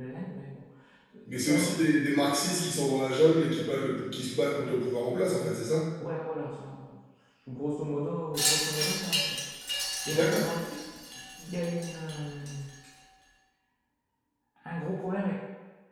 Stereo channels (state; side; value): identical; both; correlation 1.00